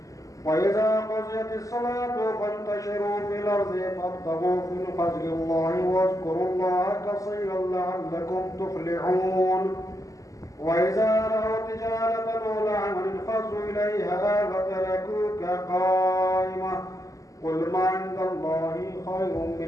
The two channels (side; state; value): right; late; 0.16 ms